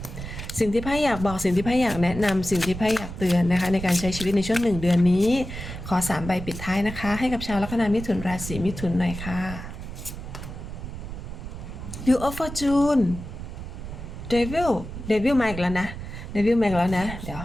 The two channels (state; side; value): noise; right; rumble, 9 dB below the sound